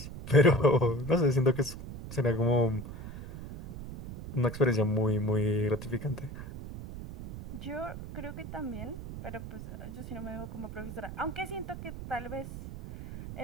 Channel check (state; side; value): noise; right; rumble, 10 dB below the sound